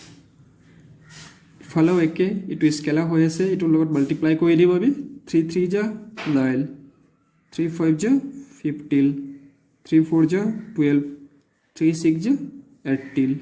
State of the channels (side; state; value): both; identical; correlation 1.00